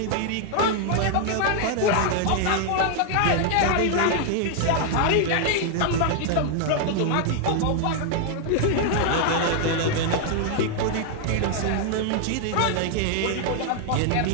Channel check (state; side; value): different; both; correlation 0.00